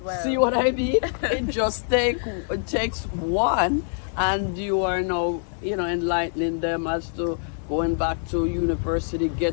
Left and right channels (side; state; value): right; silent; 57 dB below the other